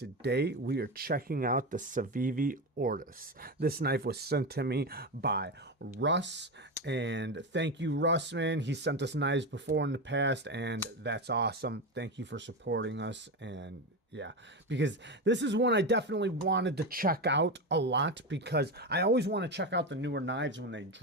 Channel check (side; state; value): both; normal; correlation 0.17